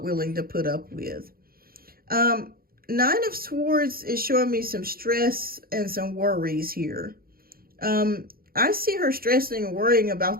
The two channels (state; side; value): late; left; 0.43 ms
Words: willing to put up with. Nine of Swords is showing me some stress and some worries here. I see her stressing and worrying about